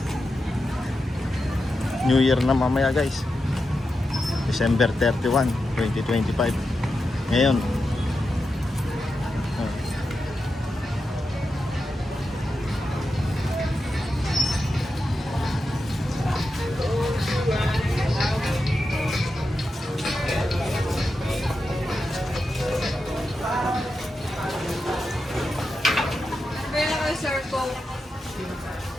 New Year na mamaya guys. December 31, 2025. Ngayon. Sir po.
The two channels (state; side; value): normal; both; correlation 0.89